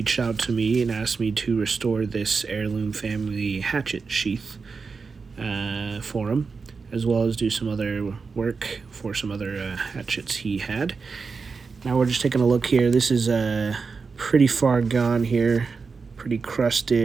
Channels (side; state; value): left; quieter; 4.8 dB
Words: out to me and asked me to restore this heirloom family hatchet sheath for him, as well as do some other work for some other hatchets he had. Now we're just taking a look here. This is pretty far gone here, pretty